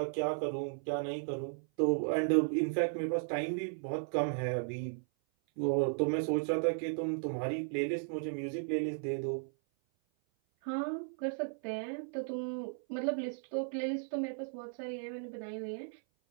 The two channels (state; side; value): silent; left; 54 dB below the other